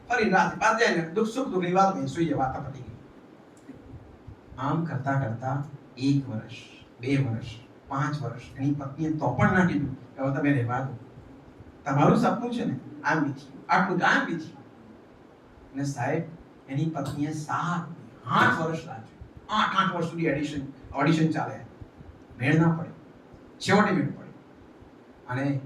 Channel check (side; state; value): both; identical; correlation 1.00